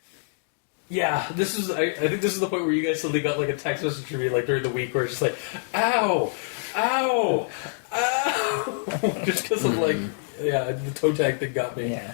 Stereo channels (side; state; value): right; silent; digital silence